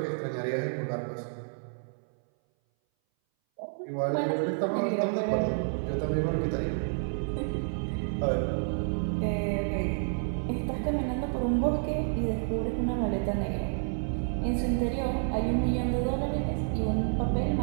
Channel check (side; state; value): left; silent; 58 dB below the other